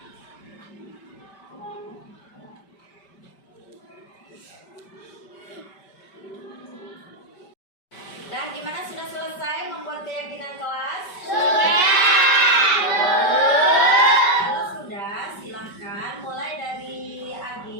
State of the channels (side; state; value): right; late; 5.1 ms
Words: Nah, gimana, sudah selesai membuat keyakinan kelas? Sudah. Kalau sudah, silahkan mulai dari